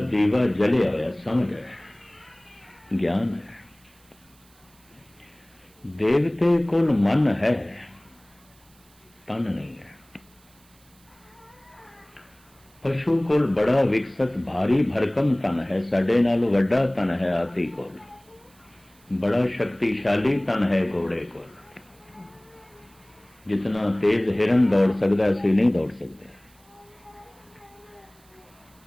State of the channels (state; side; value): noise; right; hiss, 29 dB below the sound